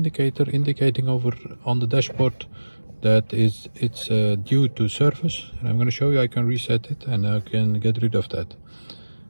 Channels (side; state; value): both; inverted; correlation -1.00